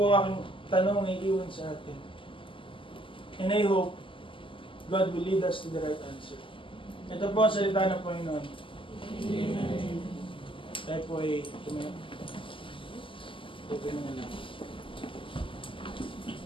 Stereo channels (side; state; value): right; late; 0.25 ms